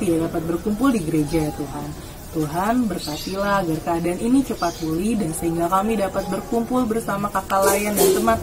tidak dapat berkumpul di gereja ya Tuhan. Tuhan berkatilah agar keadaan ini cepat pulih dan sehingga kami dapat berkumpul bersama kakak layan dan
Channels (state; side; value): identical; both; correlation 1.00